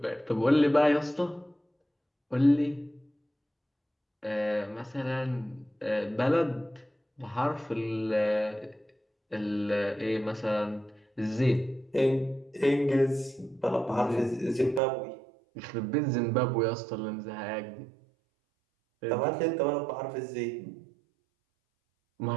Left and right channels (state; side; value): drops out; left; at 14.8 s